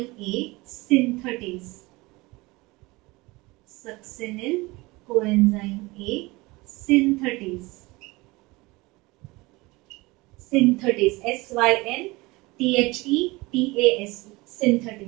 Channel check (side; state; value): left; quieter; 22.7 dB